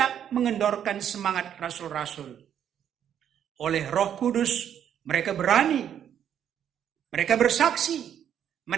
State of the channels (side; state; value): left; quieter; 9.4 dB